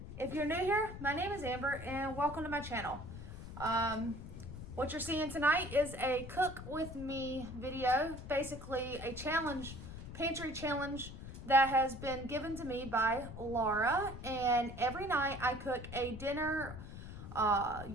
If you're new here, my name is Amber and welcome to my channel. What you're seeing tonight is a cook with me video, basically a challenge, pantry challenge that has been given to me by Laura, and every night I cook a dinner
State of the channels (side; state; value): left; noise; rumble, 11 dB below the sound